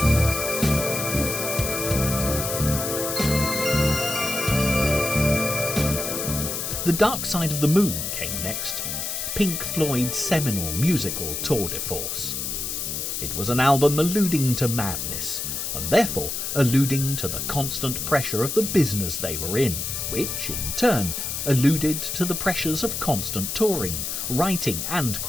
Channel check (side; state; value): left; noise; hiss, 3 dB below the sound